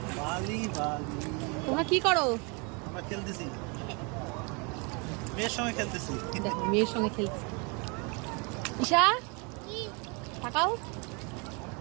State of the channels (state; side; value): quieter; left; 31.8 dB